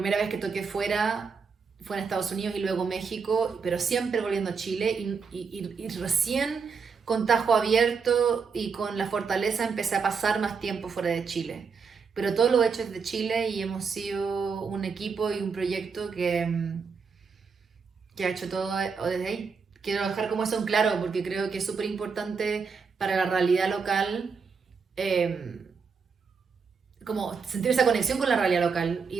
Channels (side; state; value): left; quieter; 5.5 dB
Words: vez que toqué fuera fue en Estados Unidos y luego México, pero siempre volviendo a Chile, y recién con tajo abierto y con la fortaleza empecé a pasar más tiempo fuera de Chile. Pero todo lo he hecho desde Chile y hemos sido un equipo y un proyecto que ha hecho todo desde ahí. Quiero dejar como eso en claro, porque creo que es súper importante para la realidad local, eh, como sentir esa conexión con la realidad local